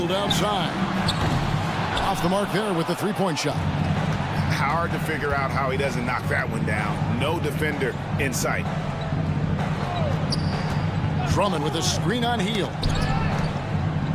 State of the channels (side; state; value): both; identical; correlation 1.00